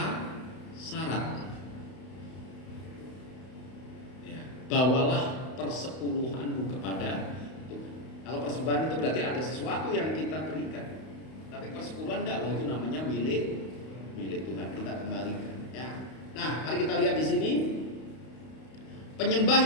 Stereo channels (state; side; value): late; right; 32 ms